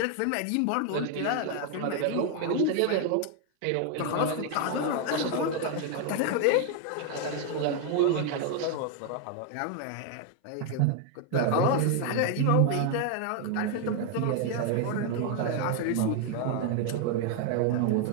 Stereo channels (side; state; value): both; different; correlation 0.01